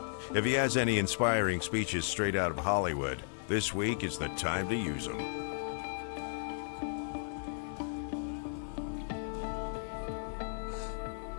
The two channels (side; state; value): right; silent; 55 dB below the other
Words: If he has any inspiring speeches straight out of Hollywood, this week is the time to use them.